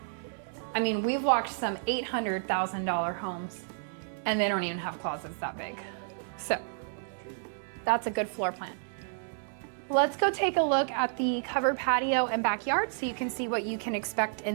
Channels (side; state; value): left; silent; 57 dB below the other